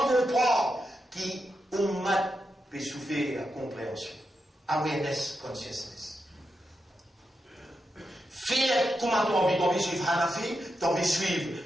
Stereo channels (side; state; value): both; normal; correlation 0.87